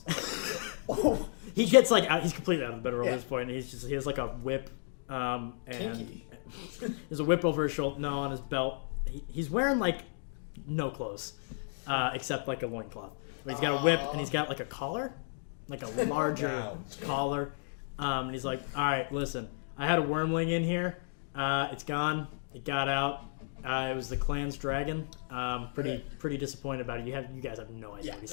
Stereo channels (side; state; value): right; silent; digital silence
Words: He gets like out. He's completely out of the bedroll at this point. And he has like a whip, and there's a whip over his shoulder. No, on his belt. He's wearing like no clothes, except like a loincloth. But he's got a whip and he's got like a collar, like a larger collar. And he's like, "All right, listen. I had a wormling in here. It's gone. It got out. It was the clan's dragon. Pretty disappointed about it. You guys have no idea what he's